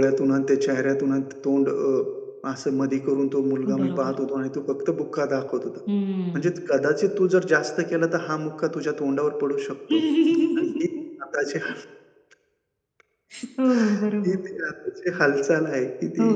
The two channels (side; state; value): both; identical; correlation 1.00